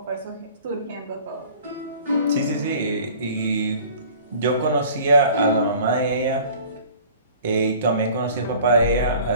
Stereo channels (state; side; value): inverted; both; correlation -0.48